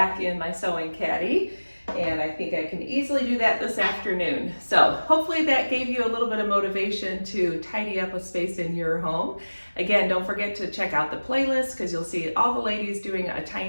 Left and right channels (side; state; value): both; inverted; correlation -1.00